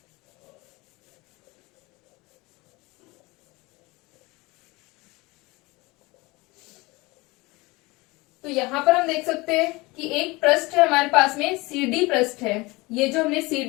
तो यहाँ पर हम देख सकते हैं कि एक पृष्ठ है हमारे पास में, CD पृष्ठ है। ये जो हमने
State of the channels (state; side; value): quieter; right; 23.2 dB